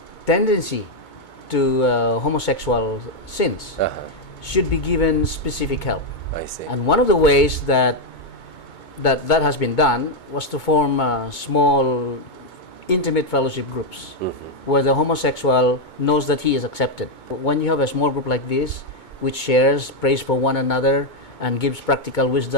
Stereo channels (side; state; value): right; late; 2.2 ms